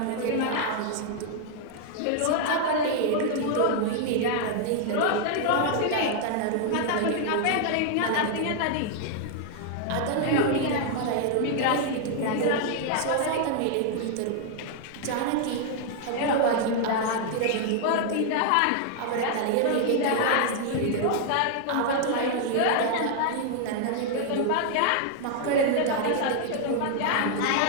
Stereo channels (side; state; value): both; different; correlation 0.00